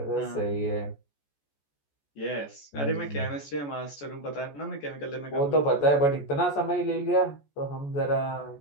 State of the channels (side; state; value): right; late; 14 ms